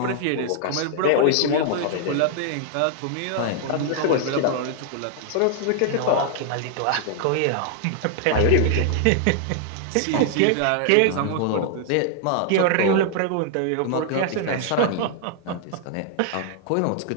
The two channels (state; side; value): different; both; correlation 0.00